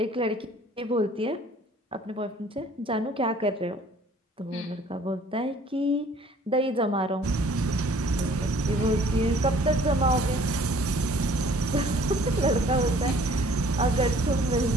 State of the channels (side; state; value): both; normal; correlation 0.55